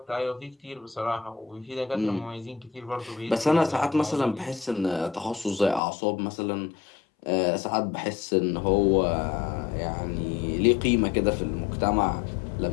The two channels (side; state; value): right; drops out; at 5.8 s